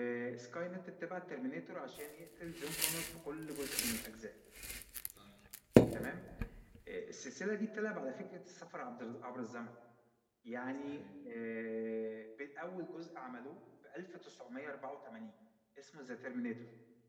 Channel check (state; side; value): identical; both; correlation 1.00